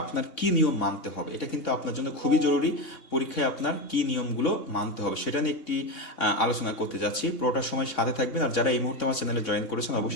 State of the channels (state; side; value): late; right; 3.6 ms